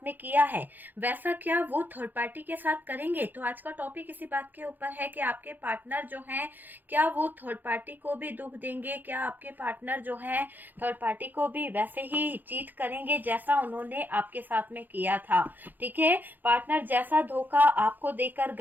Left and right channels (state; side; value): late; left; 0.087 ms